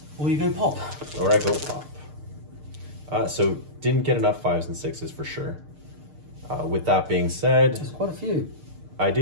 Or you go pop. Or I go pop. So didn't get enough 5s and 6s for sure. With that being said, There's quite a few. I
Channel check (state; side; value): late; left; 6.6 ms